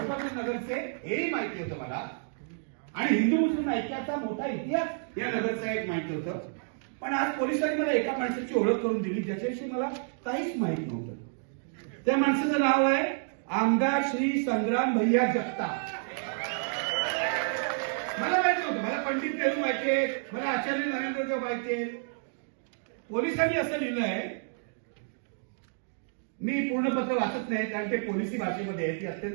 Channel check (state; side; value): silent; left; digital silence